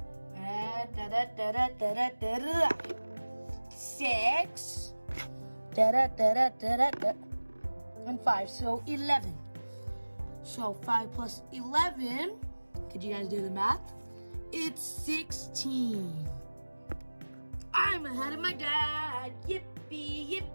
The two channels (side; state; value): both; inverted; correlation -1.00